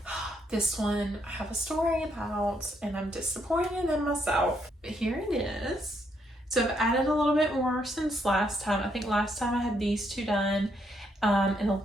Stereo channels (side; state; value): both; normal; correlation 0.75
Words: This one I have a story about, and I'm disappointed in myself, but here it is. So I've added a little bit more since last time. I think last time I had these 2 done, and a